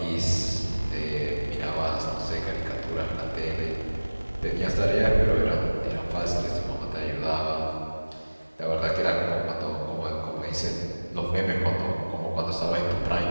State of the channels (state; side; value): inverted; both; correlation -1.00